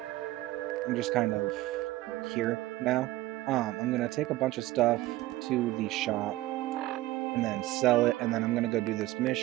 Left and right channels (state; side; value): quieter; left; 17.0 dB